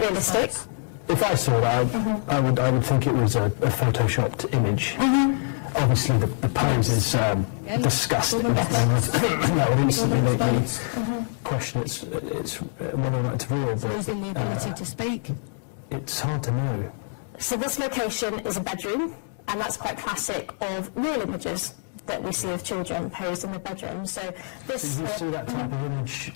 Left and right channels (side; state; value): right; silent; digital silence